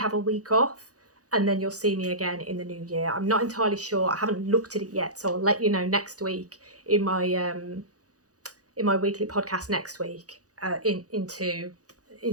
a week off, and then you'll see me again in the new year. I'm not entirely sure. I haven't looked at it yet, so I'll let you know next week in my weekly podcast next week.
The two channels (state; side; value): late; left; 0.67 ms